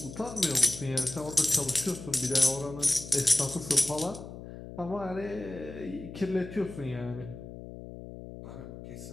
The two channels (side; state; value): left; noise; hum, 12 dB below the sound